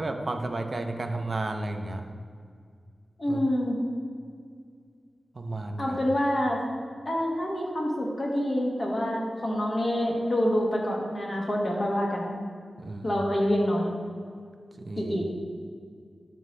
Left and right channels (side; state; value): both; normal; correlation 0.95